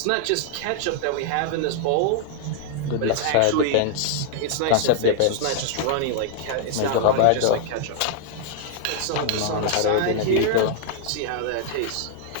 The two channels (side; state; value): both; different; correlation 0.00